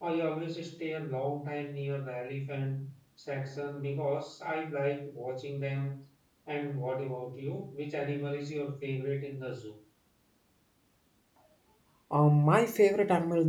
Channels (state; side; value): identical; both; correlation 1.00